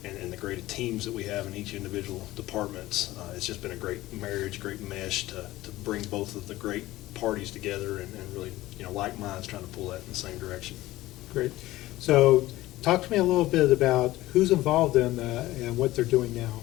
and the great teams that we have in each individual departments, it's just been a great marriage, great mesh to bring both of the great parties together and really, you know, like minds trying to pull that in the same direction. Great. So talk to me a little bit about who's involved in and what they're doing now.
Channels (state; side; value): quieter; right; 17.0 dB